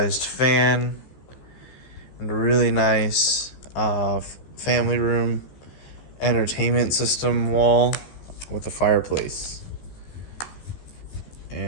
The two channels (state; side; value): late; right; 15 ms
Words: fan and a really nice family room entertainment system wall with a fireplace.